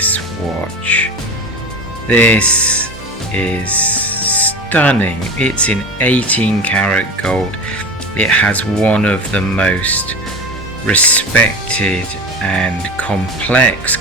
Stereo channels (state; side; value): normal; both; correlation 0.29